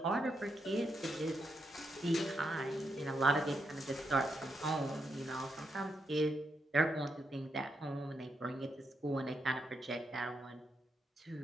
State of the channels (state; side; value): normal; both; correlation 0.82